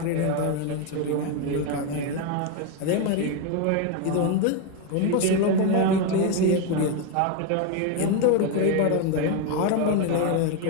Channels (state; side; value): different; both; correlation 0.02